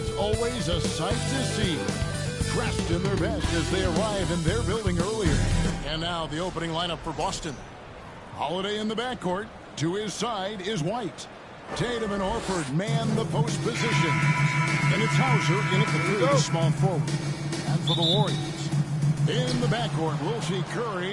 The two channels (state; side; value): identical; both; correlation 1.00